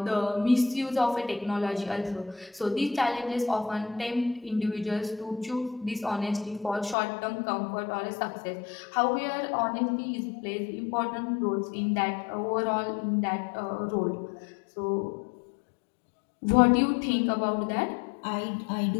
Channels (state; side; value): drops out; right; at 7.0 s